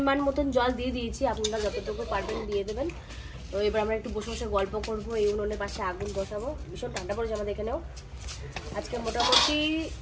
মতন জল দিয়ে দিয়েছি, আপনারা যতটুকু পারবেন দিয়ে দেবেন। তো এবার আমরা একটু বসে বসে গল্প করবো, এই উনুনের পাশে আগুন বসাবো। ভীষণ ঠান্ডা পড়েছে আমাদের এখানেও, আজকে মোটামুটি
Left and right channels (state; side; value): identical; both; correlation 1.00